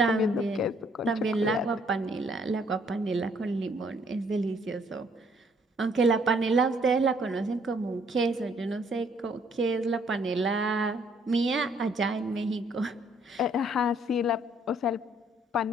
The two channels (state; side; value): normal; both; correlation 0.65